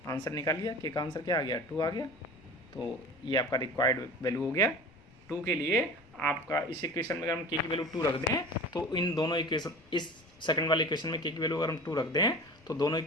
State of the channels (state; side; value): noise; left; rumble, 27 dB below the sound